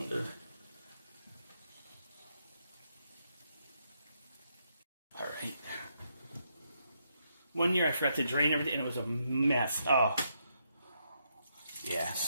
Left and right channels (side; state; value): both; inverted; correlation -0.78